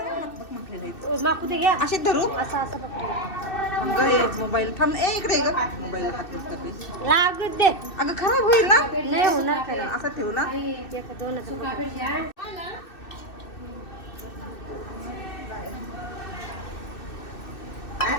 माकू ते घ्या. असे धरू असं असं पकडते. मोबाईल थांब. इकडे ग मोबाईल लागत दे. अगं खराब होईल ना. नाही होणार काय. असं ठेवू ना.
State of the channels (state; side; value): late; right; 2.6 ms